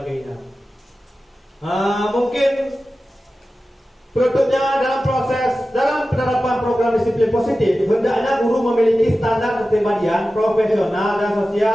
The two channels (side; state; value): both; normal; correlation 0.94